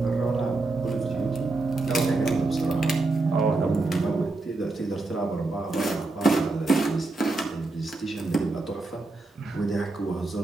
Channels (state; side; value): quieter; left; 3.3 dB